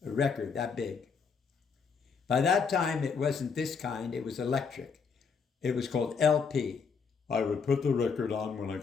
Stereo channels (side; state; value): right; quieter; 5.7 dB